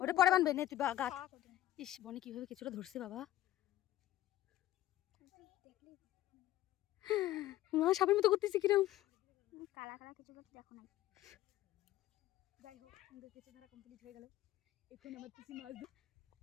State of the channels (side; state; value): right; quieter; 14.1 dB